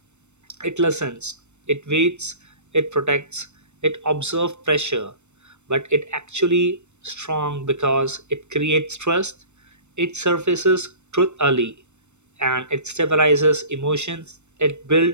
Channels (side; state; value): left; late; 0.82 ms